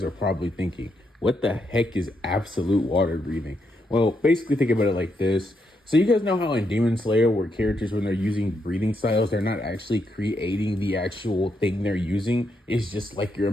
are probably thinking. What the heck is absolute water breathing? Well, basically, think about it like this. So, you guys know how in Demon Slayer, where characters, when they're using breathing styles, they're not actually creating the actual thing they're using. It's just like your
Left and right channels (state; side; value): normal; both; correlation 0.80